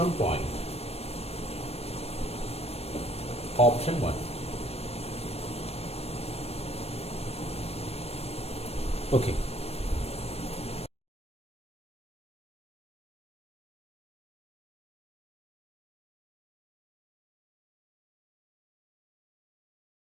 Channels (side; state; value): right; late; 0.29 ms